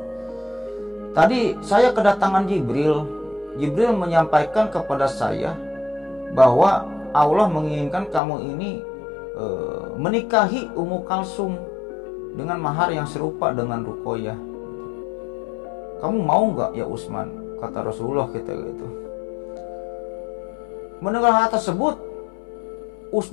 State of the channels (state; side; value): drops out; right; at 8.2 s